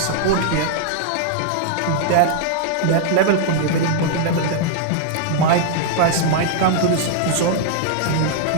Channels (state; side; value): different; both; correlation -0.01